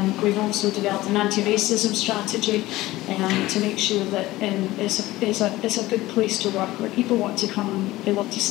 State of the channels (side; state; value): right; quieter; 17.6 dB